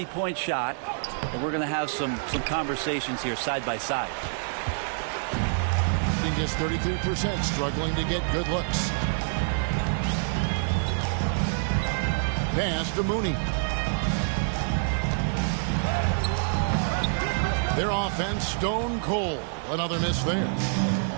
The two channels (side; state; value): left; silent; digital silence